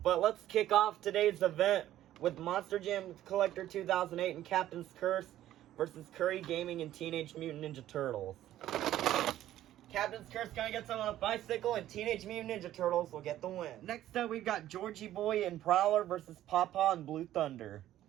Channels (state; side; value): quieter; left; 13.1 dB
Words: But let's kick off today's event with Monster Jam Collector 2008 and Captain's Curse versus Curry Gaming and Teenage Mutant Ninja Turtles. Captain's Curse gonna get someone on a bicycle, and Teenage Mutant Ninja Turtles will get the win. Next up, we've got Georgie Boy and Prowler versus Pawpaw and Blue Thunder.